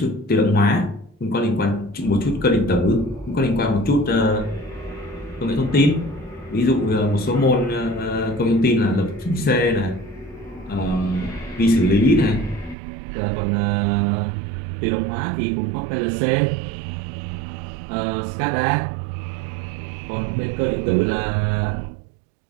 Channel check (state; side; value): drops out; left; at 12.8 s